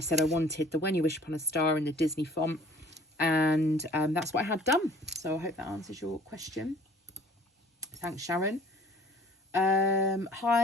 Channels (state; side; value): normal; both; correlation 0.52